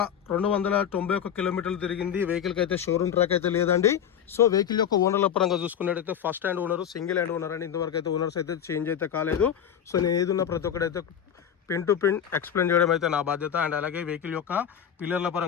కిలోమీటర్లు తిరిగింది. వెహికల్కి అయితే షోరూమ్ ట్రాక్ అయితే లేదండి. సో వెహికల్ యొక్క ఓనర్ల పరంగా చూసుకున్నట్టయితే first hand owner, single hand owner అండి. ఇంతవరకు అయితే ఓనర్స్ అయితే చేంజ్ అయితే కాలేదు. సో నేను ఏదున్నా ప్రతి ఒక్కడైతే పిన్ టు పిన్ ఎక్స్ప్లెయిన్ చేయడం అయితే నా బాధ్యత. అండ్ అలాగే వెహికల్ యొక్క పిల్లర్ల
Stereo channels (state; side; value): quieter; right; 8.8 dB